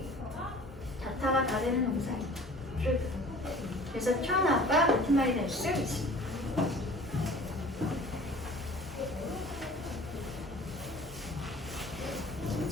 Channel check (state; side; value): normal; both; correlation 0.46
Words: 자타가 다 되는 동사입니다. 그래서 turn out과 같은 말이 될 수 있습니다.